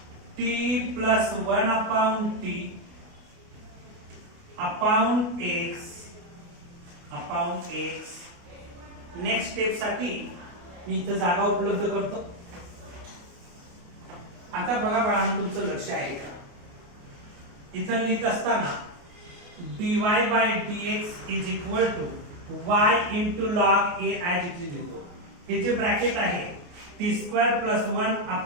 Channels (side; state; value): left; late; 28 ms